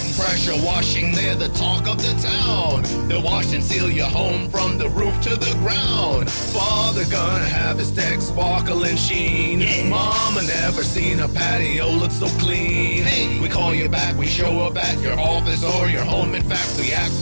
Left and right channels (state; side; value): inverted; both; correlation -1.00